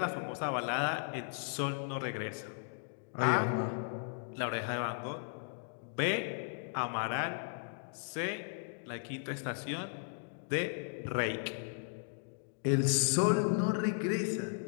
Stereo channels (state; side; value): silent; right; digital silence